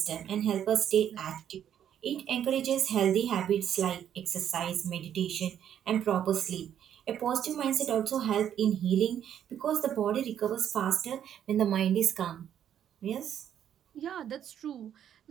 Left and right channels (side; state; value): left; quieter; 9.8 dB